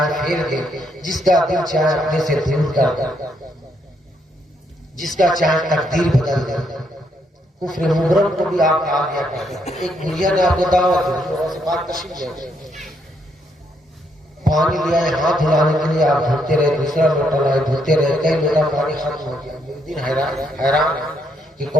پھیر دے، جس کا دل چاہے اپنے سے دور کر دے، جس کا چاہے تقدیر بدل دے. کفر مبرم کو بھی آپ آ گیا کرتے ہیں. ایک بڑھیا نے آپ کو دعوت دی غوث پاک تشریف لے پانی لیا ہے ہاتھ دھلانے کے لیے، آپ دھلتے رہے، دوسرا لوٹا لائے دھلتے رہے، کئی لوٹا پانی ختم ہو گیا. دن حیران کہ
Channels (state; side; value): normal; both; correlation 0.74